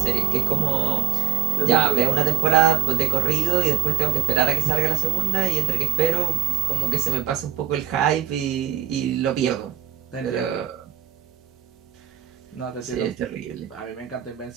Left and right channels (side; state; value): left; quieter; 10.9 dB